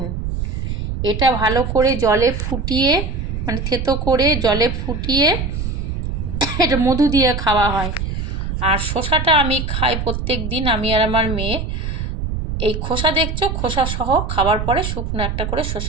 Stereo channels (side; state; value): right; noise; rumble, 3 dB below the sound